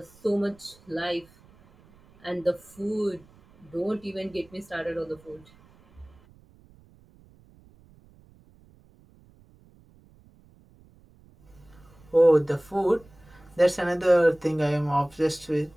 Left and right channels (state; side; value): noise; right; rumble, 27 dB below the sound